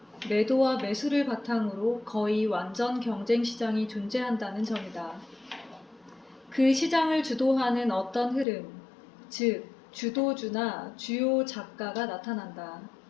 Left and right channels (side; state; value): right; drops out; at 8.5 s